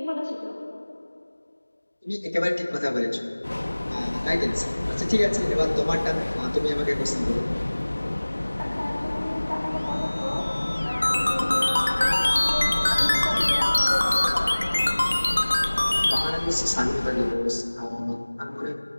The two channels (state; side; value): inverted; both; correlation -1.00